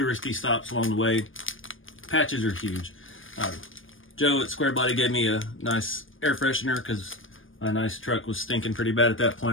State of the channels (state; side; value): late; right; 0.58 ms